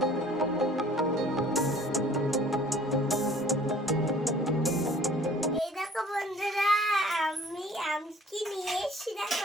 এই দেখো বন্ধুরা, আমি আমকি নিয়ে এসেছি, দেখো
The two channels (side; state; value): both; normal; correlation 0.52